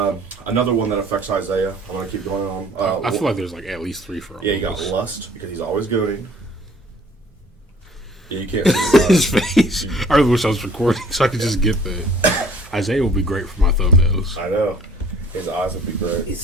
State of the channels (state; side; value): normal; both; correlation 0.54